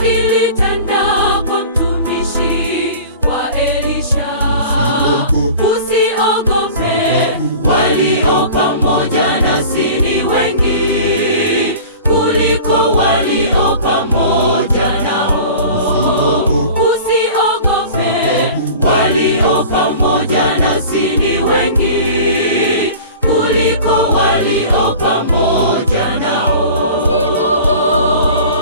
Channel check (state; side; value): inverted; both; correlation -0.40